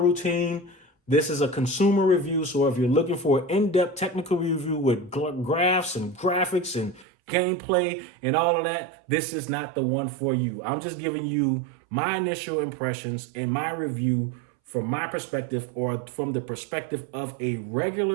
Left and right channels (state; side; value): drops out; left; at 7.1 s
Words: This is a consumer review, so if you're looking for an in-depth technical review with graphs and graphics and gameplay and all of that, this is not the one for you. I'm just giving you my initial impressions and my review from my perspective, or from the perspective of a